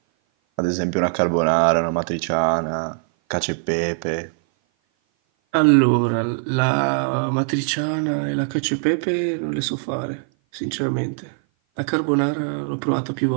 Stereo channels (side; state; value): left; silent; 56 dB below the other